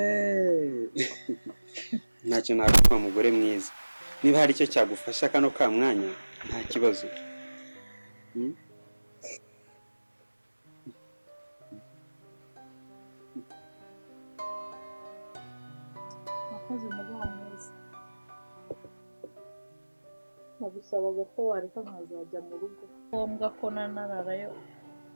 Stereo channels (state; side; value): inverted; both; correlation -1.00